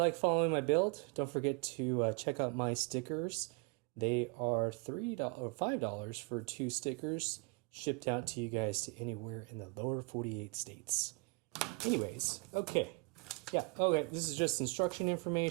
following my build, don't forget to check out my stickers. They are $3 or $5 for 2 stickers, shipped out to you guys to anywhere in the lower 48 states. Anyways, okay. Yeah, okay, this is just instruction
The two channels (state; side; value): quieter; left; 30.7 dB